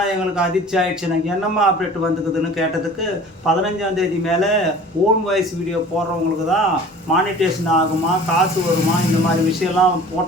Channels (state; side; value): normal; both; correlation 0.44